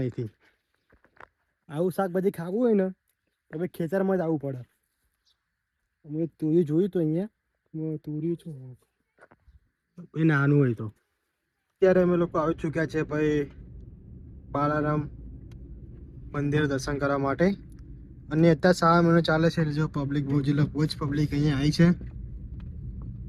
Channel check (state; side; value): identical; both; correlation 1.00